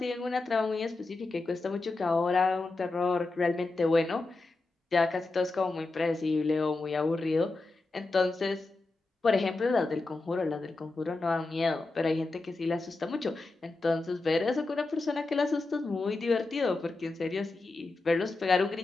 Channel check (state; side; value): quieter; right; 3.4 dB